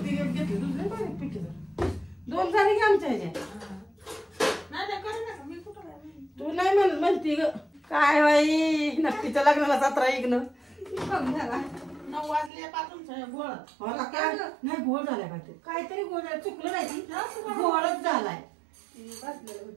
दुसऱ्या पाण्यात पिठी 2 झाली की आमच्या ह्याच्या. तू नाही म्हणती ग काय बाई नक्कीच्या लग्नाला 17 इग्न 9 वाजल्यापासून गोळ. काय नाही गोळ झालाय काहीतरी गोळ झाला. चुकलं नाही ती गोळच झालाय.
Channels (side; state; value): left; drops out; at 12.5 s